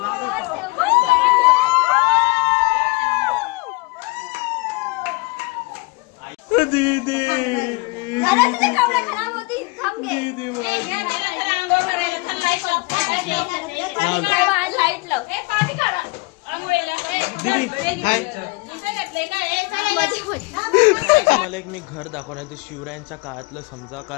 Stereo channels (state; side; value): quieter; right; 26.2 dB